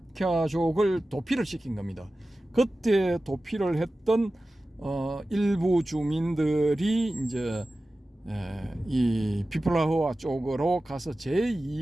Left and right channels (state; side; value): normal; both; correlation 0.95